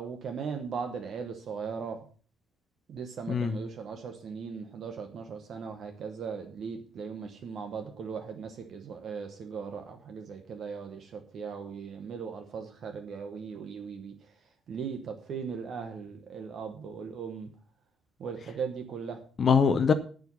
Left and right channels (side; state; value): both; normal; correlation 0.69